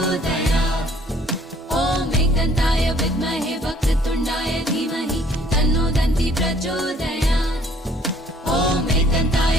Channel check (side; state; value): both; normal; correlation 0.59